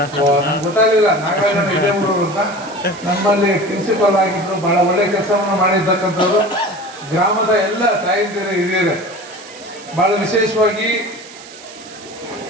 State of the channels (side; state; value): right; noise; hiss, 18 dB below the sound